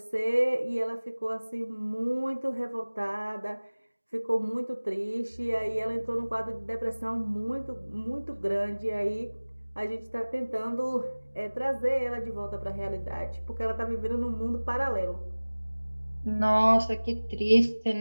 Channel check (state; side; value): inverted; both; correlation -1.00